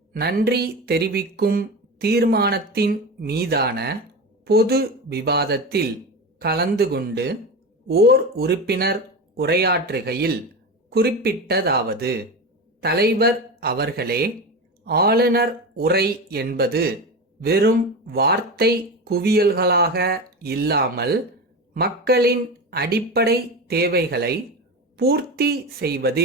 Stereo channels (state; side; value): normal; both; correlation 0.24